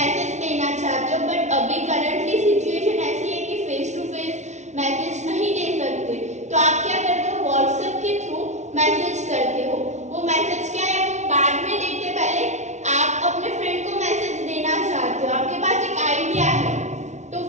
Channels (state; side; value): late; left; 0.33 ms